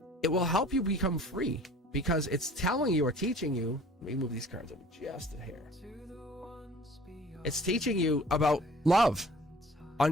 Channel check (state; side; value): normal; both; correlation 0.49